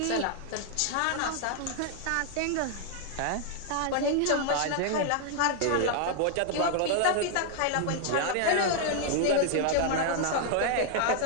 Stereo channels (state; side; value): different; both; correlation 0.00